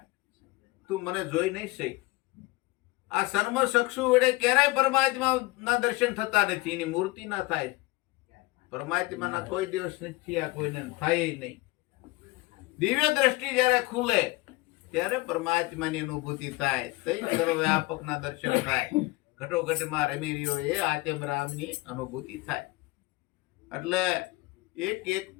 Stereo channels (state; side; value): quieter; right; 21.7 dB